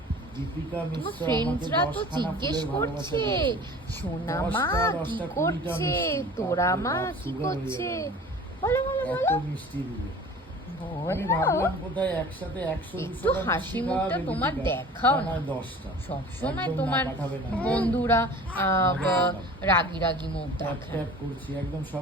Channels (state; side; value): normal; both; correlation 0.43